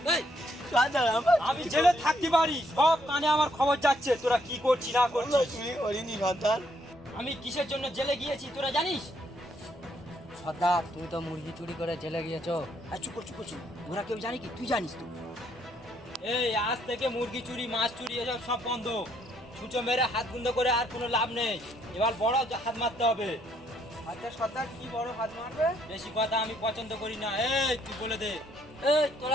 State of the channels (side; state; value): both; normal; correlation 0.70